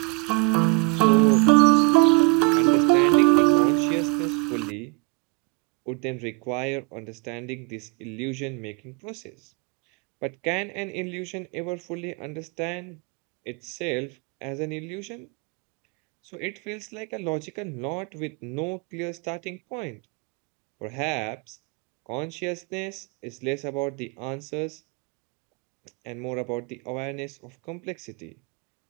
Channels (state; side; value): quieter; left; 30.5 dB